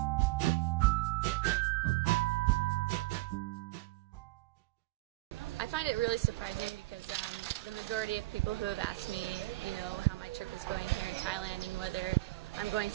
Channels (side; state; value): left; quieter; 19.8 dB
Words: I find it really surprising because the majority of people who have asked me, how my trip is going here in Thailand and whether I'm going